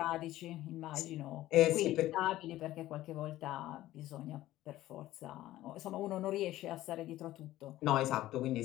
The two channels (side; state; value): right; quieter; 15.3 dB